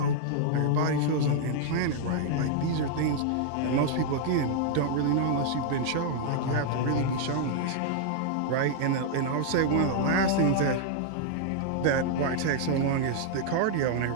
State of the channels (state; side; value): different; both; correlation -0.01